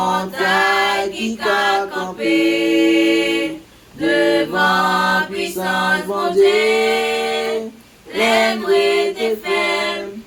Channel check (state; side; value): identical; both; correlation 1.00